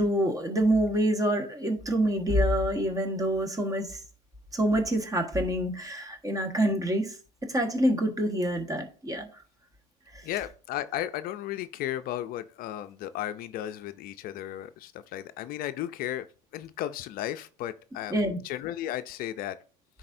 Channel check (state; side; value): normal; both; correlation 0.62